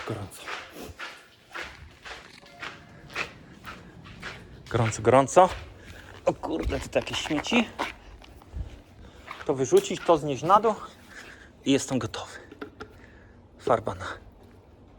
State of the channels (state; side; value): identical; both; correlation 1.00